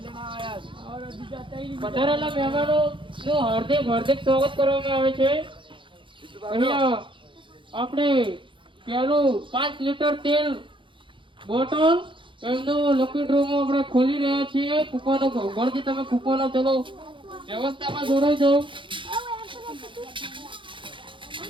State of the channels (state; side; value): late; left; 0.24 ms